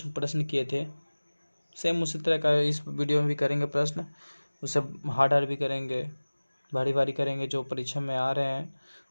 प्रश्न किए थे। सेम उसी तरह का इस वीडियो में भी करेंगे प्रश्न। उसे हार्ड भी करेंगे, भारी करेंगे, जो परीक्षा में आ रहे हैं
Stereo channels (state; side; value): inverted; both; correlation -1.00